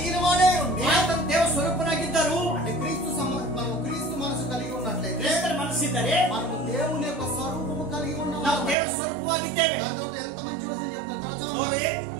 వాడే ఉండి ಆತನು ದೇವ ಸ್ವರೂಪನಾಗಿದ್ದರು. అంటే మనం క్రీస్తు మనసు కలిగి ఉన్నట్లయితే ಕ್ರಿಸ್ತರ ಮನಸ್ಸಿದ್ದರೆ మనము దేవుని యొక్క స్వరూపము కలిగి ನಾವು ఉన్నాము. ದೇವರ ಸ್ವರೂಪವಾಗಿದ್ದೇವೆ. దాని తర్వాత ఎంత మంచి వచనం చెప్తారు తర్వాత ನೋಡಿ,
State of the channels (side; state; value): left; drops out; at 8.8 s